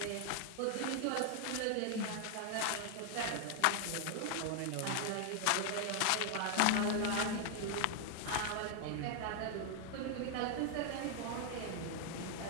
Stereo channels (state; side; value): different; both; correlation 0.00